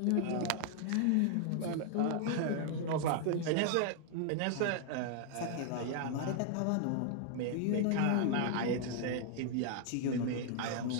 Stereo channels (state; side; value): different; both; correlation 0.00